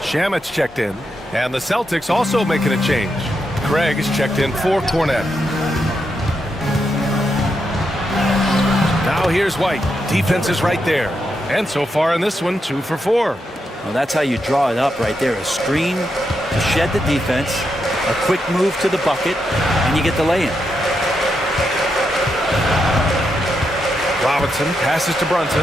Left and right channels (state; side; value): normal; both; correlation 0.83